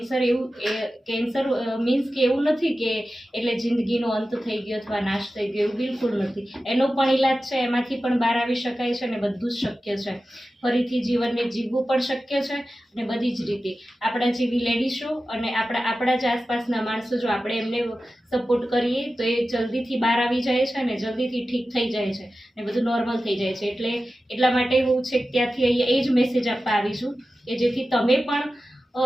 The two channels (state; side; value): normal; both; correlation 0.94